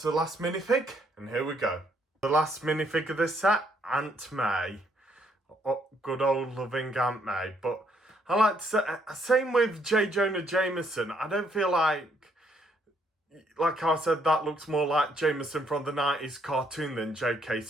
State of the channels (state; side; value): normal; both; correlation 0.70